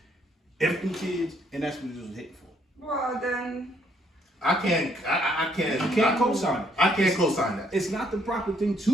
Everything kids, and that's what it was hitting for. Well, then. I can't. You can't co-sign it. I can't co-sign that. It's not the proper thing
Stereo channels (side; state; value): both; normal; correlation 0.69